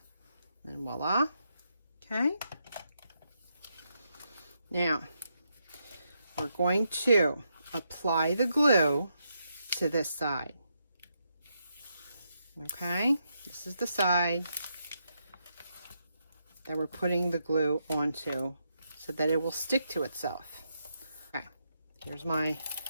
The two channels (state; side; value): inverted; both; correlation -0.81